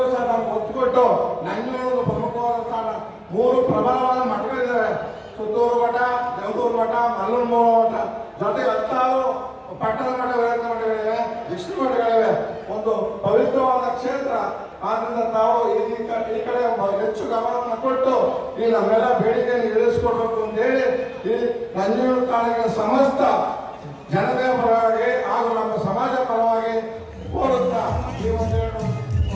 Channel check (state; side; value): identical; both; correlation 1.00